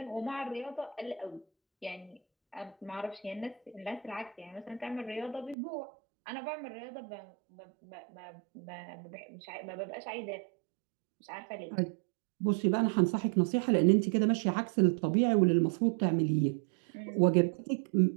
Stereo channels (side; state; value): left; drops out; at 5.6 s